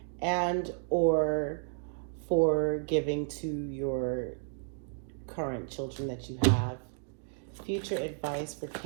and or for giving to your current children that you have. Future advice for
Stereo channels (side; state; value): left; silent; digital silence